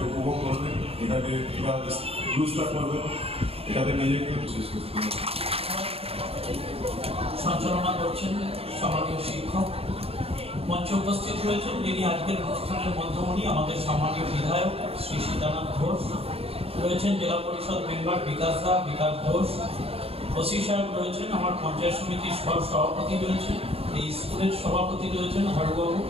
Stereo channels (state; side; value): late; left; 0.28 ms